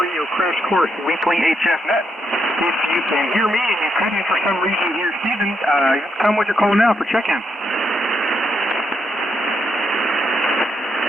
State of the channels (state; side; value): normal; both; correlation 0.79